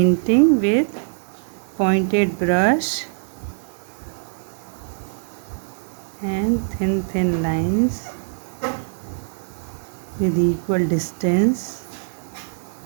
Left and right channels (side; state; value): left; silent; digital silence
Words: with pointed brush and thin lines with equal distance.